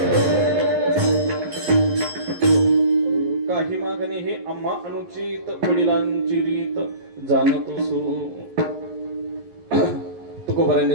हे आम्हा अनुचित वडिलांची रीत जाणतो सो.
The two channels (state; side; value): late; left; 11 ms